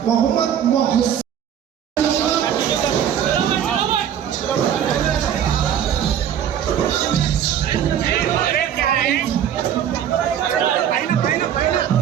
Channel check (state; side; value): quieter; left; 9.5 dB